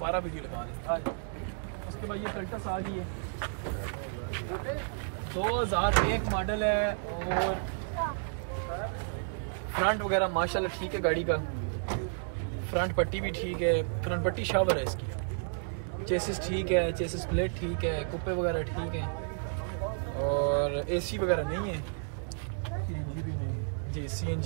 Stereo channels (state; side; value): silent; left; digital silence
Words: वीडियो लगा दें। उसके बाद ये कल्टस आ गई है, 2001 मॉडल है, और फ्रंट वगैरह माशाल्लाह ठीक है, गाड़ी का फ्रंट पट्टी भी ठीक है, फ्रंट पट्टी शावर है इसकी, चेसिस ठीक है, चेसिस प्लेट ठीक है, कुप्पे वगैरह ठीक है, और एसी वगैरह नहीं है जी,